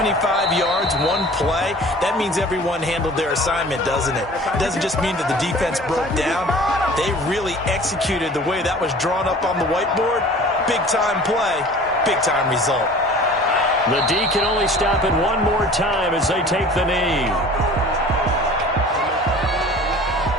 yards, one play. That means everyone handled their assignment, doesn't it? It doesn't just mean that the defense broke down. They really executed the way that was drawn up on the whiteboard. Big-time play, big-time result. The D can only stop it one more time as they take the knee.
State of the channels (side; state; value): both; normal; correlation 0.44